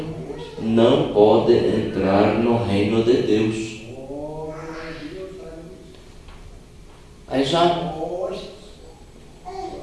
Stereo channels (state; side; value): identical; both; correlation 1.00